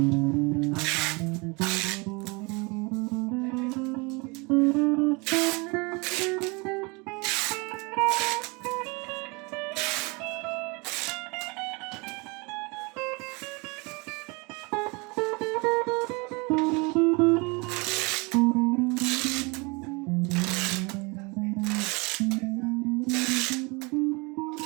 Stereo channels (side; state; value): left; quieter; 28.3 dB